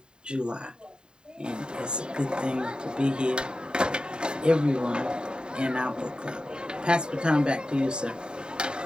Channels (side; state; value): left; late; 0.048 ms